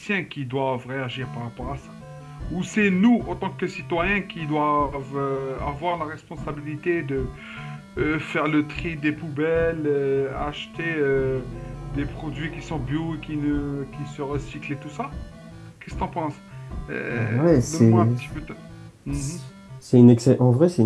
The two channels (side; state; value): both; identical; correlation 1.00